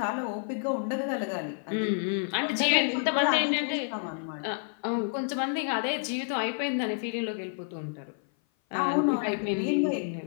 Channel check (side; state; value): right; silent; 56 dB below the other